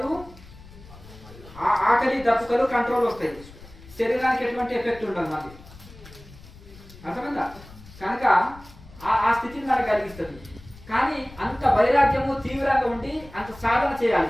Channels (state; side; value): noise; left; rumble, 20 dB below the sound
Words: ఆకలి దప్పుకలు కంట్రోల్ వస్తాయి, శరీరానికి ఎటువంటి ఎఫెక్ట్ ఉండదు మళ్ళీ. అర్థమైందా? కనుక ఆ స్థితిని మనకు కలిగిస్తుంది. కానీ అంత వైరాగ్యము తీవ్రంగా ఉండి అంత సాధన చేయాలి.